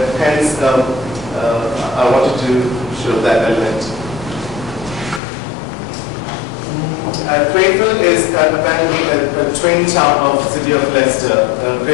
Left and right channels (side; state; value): right; drops out; at 5.2 s